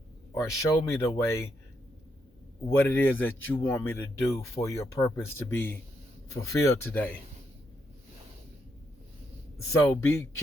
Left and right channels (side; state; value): both; normal; correlation 0.79